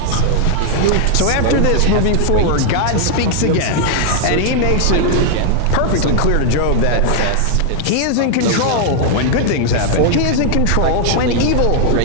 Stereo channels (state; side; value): different; both; correlation 0.00